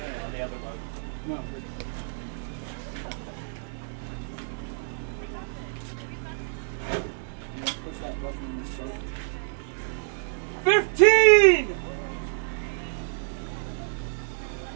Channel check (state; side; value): silent; left; digital silence